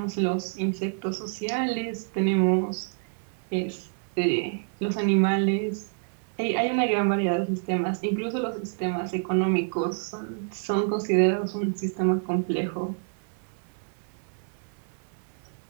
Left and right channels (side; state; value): left; silent; 60 dB below the other